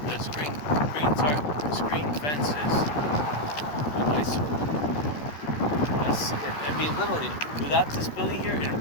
Literally, without this building here, it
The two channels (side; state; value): right; late; 13 ms